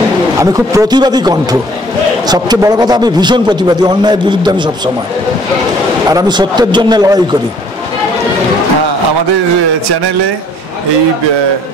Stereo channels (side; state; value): both; normal; correlation 0.58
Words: আমি খুব প্রতিবাদী কণ্ঠ, সবচেয়ে বড় কথা আমি ভীষণ প্রতিবাদী, অন্যায়ের বিরুদ্ধে আমি সবসময়, আর আমি সত্যের জন্য লড়াই করি। আমাদের চ্যানেলে এই